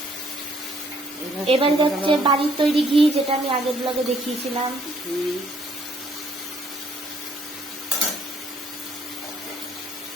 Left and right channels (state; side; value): normal; both; correlation 0.65